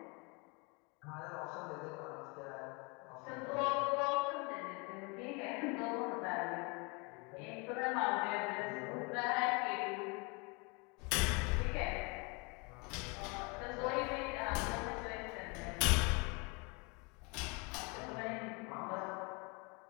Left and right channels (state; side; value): quieter; right; 30.4 dB